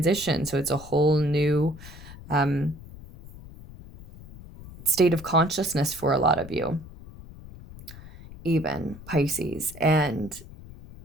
So it's a whole new state of consciousness for a lot of you, even Pisces. And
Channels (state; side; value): noise; left; rumble, 17 dB below the sound